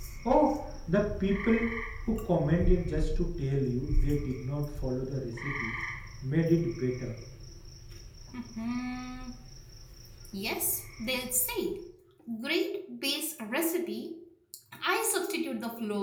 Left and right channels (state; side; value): identical; both; correlation 1.00